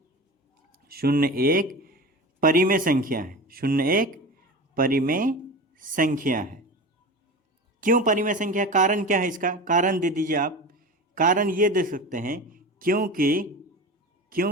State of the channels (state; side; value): normal; both; correlation 0.30